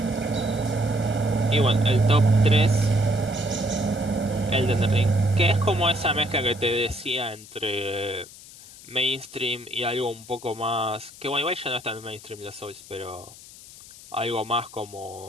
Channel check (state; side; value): noise; left; hiss, 19 dB below the sound